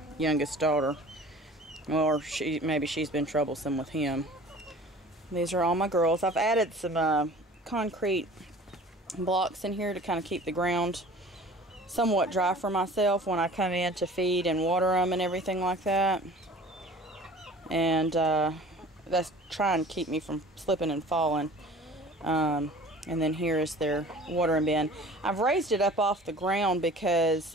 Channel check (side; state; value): both; normal; correlation 0.45